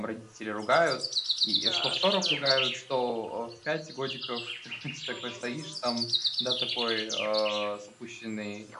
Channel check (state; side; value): identical; both; correlation 1.00